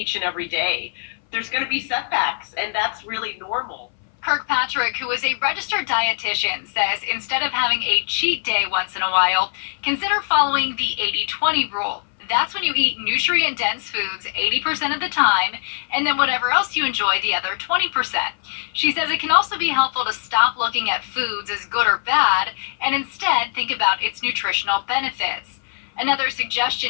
and every day. There's going to be setbacks, and that's really normal. Kirkpatrick, who is a registered dietitian, says instead of having a cheat day once in a while, consider following the 80-20 rule. That's when you eat nutrient-dense foods 80% of the time, and then whatever else you enjoy the other 20%. She says it can also be helpful to stop looking at foods as good or bad, and instead think about its nutritional benefits. Another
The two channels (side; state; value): right; silent; 59 dB below the other